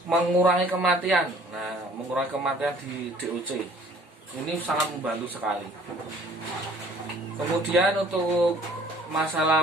mengurangi kematian. Nah, mengurangi kematian di DOC ini sangat membantu sekali. Kemudian untuk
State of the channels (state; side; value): normal; both; correlation 0.55